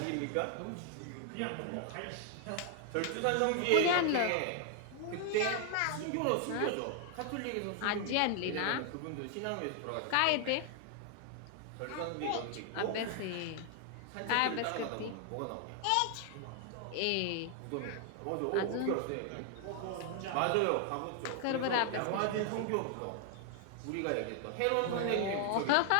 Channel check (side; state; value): both; different; correlation 0.00